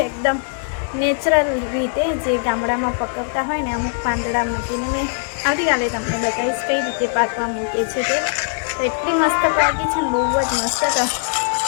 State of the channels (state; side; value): silent; right; digital silence